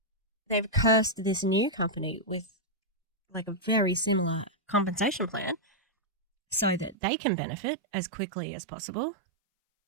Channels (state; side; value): drops out; left; at 7.0 s